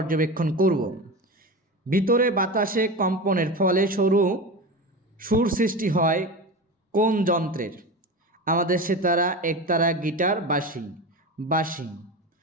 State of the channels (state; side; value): normal; both; correlation 0.26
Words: করব। ভিতরে বাতাসে কম্পনের ফলে সুর সৃষ্টি হয় কোন যন্ত্রের? আমাদের সেতারা, একতারা, গিটার, বাঁশি।